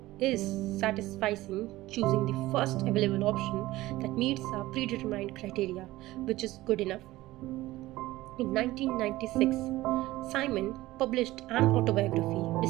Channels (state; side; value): quieter; left; 17.5 dB